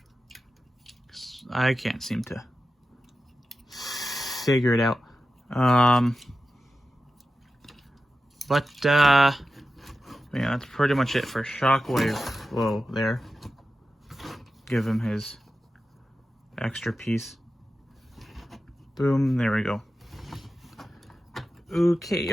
I can't seem to figure it out. Yeah, that's pretty much it for Shockwave. Whoa, there. Give him his extra piece. Boom, there we go. Okay,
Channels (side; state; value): both; normal; correlation 0.92